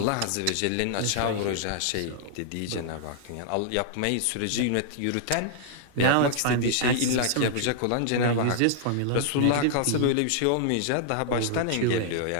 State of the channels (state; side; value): different; both; correlation -0.01